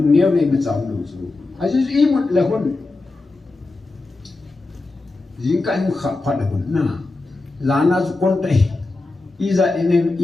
nhiều này mà cháu lúc chú ai chú ý một là hôn riêng cái một khắp phát là hôn na là na chú con tay iza enen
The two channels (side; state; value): right; quieter; 3.3 dB